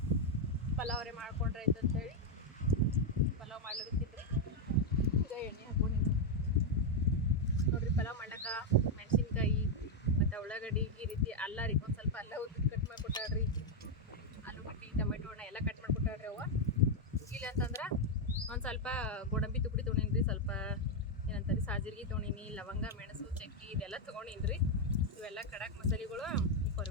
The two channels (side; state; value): both; normal; correlation 0.01